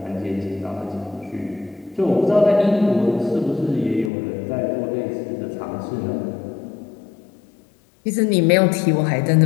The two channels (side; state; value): right; drops out; at 4.1 s